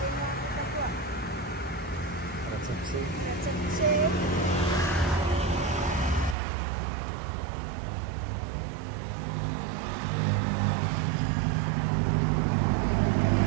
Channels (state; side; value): drops out; left; at 6.4 s